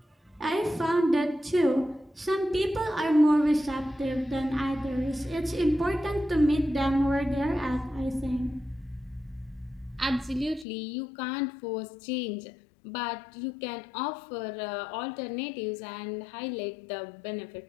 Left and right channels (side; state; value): right; drops out; at 10.7 s